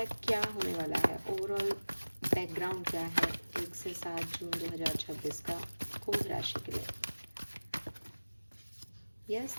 क्या होने वाला है, ओवरऑल बैकग्राउंड क्या है 1 से 7 जून 2026 का कुंभ राशि के लिए। Yes,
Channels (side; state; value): both; inverted; correlation -1.00